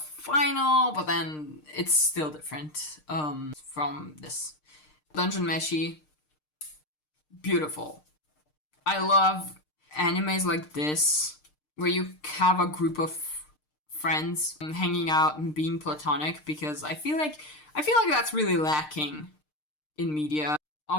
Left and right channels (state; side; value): late; right; 6.6 ms